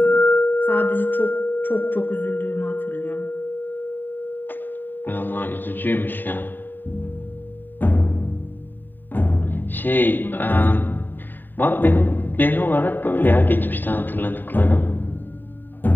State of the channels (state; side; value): late; right; 0.092 ms